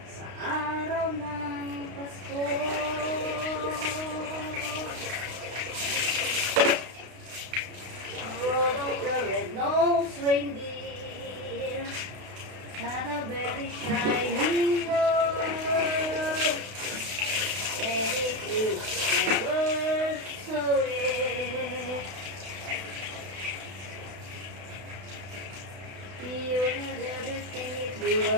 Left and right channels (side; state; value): left; late; 32 ms